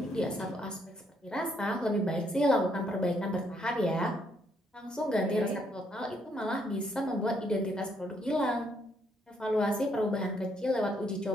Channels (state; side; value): normal; both; correlation 0.72